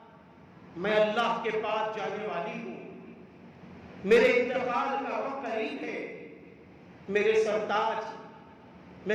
میں اللہ کے پاس جانے والی ہوں، میرے انتقال کا وقت قریب ہے، میرے سرتاج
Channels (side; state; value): both; identical; correlation 1.00